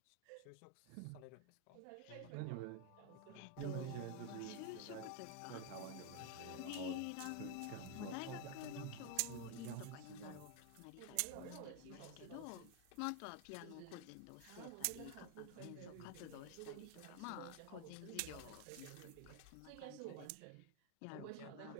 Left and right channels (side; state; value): both; different; correlation 0.01